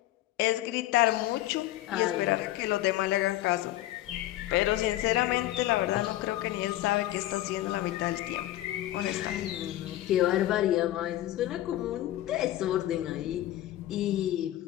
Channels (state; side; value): quieter; right; 14.7 dB